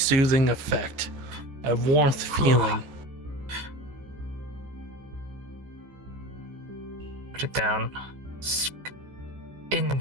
effect, a warmth feeling. Put it down.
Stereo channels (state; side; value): late; left; 14 ms